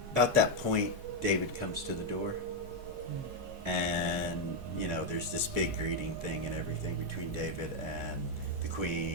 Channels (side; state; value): both; normal; correlation 0.02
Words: About that point, David comes to the door, and you know, there's this big greeting thing and everything between David and the